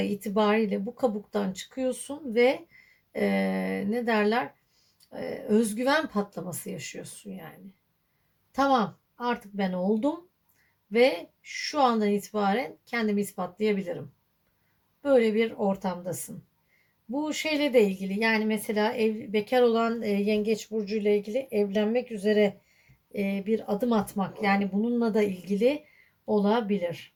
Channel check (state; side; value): identical; both; correlation 1.00